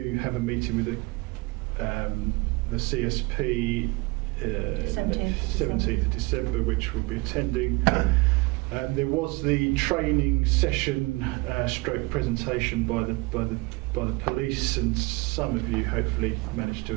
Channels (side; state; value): left; quieter; 25.0 dB